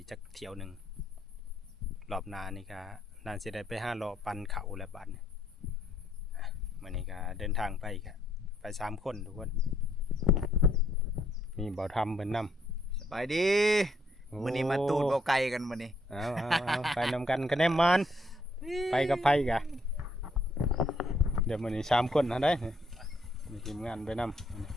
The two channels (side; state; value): both; normal; correlation 0.71